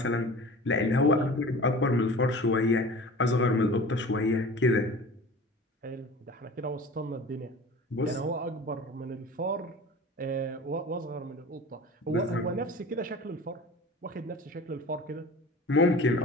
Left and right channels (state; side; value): normal; both; correlation 0.39